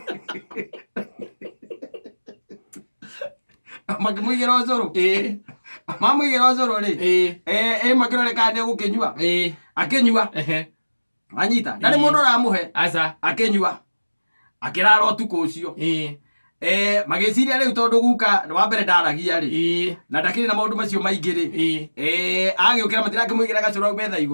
makĩmũigĩra ũcũrũ mamũigĩra ũcũrũ rĩ makĩrore kana nĩegũkĩnyua akĩnyua anyita ndarĩ mũndũ ũramũhe akĩnyua akĩrara ũtukũ ũcio magĩciria rĩu tondũ guka wa mbere ndaragia rĩ na ndakĩrĩ na maũndũ macio maingĩ rĩ agĩũkĩra matirakĩmũigĩra gacũrũ hau metha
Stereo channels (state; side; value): inverted; both; correlation -1.00